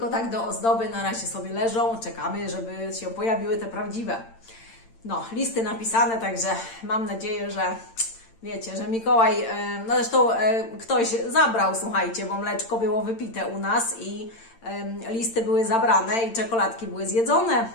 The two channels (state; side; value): late; right; 8.8 ms